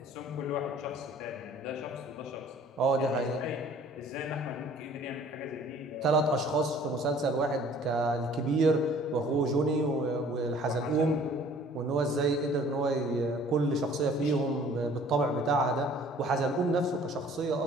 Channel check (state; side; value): normal; both; correlation 0.52